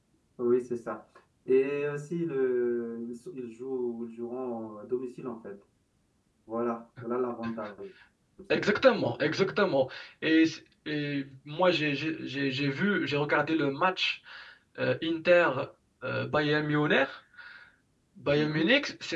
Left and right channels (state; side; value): identical; both; correlation 1.00